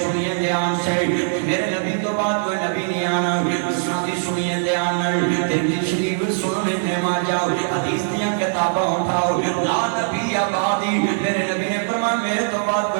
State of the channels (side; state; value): left; silent; 57 dB below the other